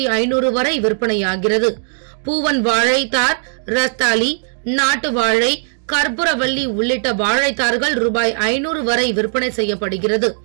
வரை விற்பனையாகிறது. பூவன் வாழைத்தார், ரஸ்தாலி, நாட்டு வாழை, கற்பூரவள்ளி உள்ளிட்ட வாழைத்தார்கள் ரூபாய் 500 வரை விற்பனை செய்யப்படுகிறது.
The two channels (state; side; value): silent; left; digital silence